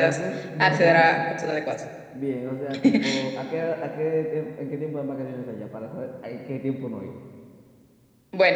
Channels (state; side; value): identical; both; correlation 1.00